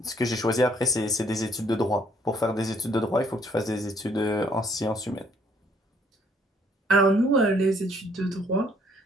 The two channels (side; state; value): both; normal; correlation 0.64